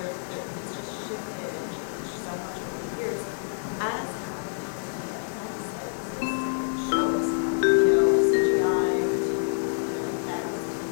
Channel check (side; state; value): right; silent; digital silence